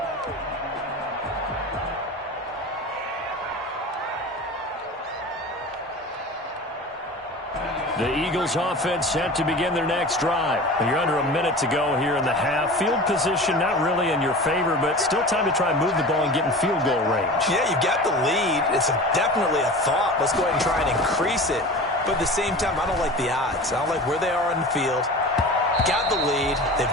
The Eagles offense set to begin their next drive. You're under a minute to go here in the half. Field position not really in your favor, but still time to try and move the ball and get in field goal range. Yeah, you've got the lead. It's definitely a thought. Let's go ahead and try and increase it. But at the same time, I don't like the odds. I don't like where they are in the field. Got the lead.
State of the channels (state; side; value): normal; both; correlation 0.35